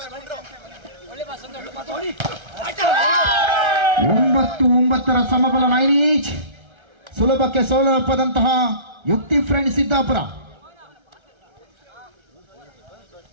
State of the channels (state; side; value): late; left; 1.3 ms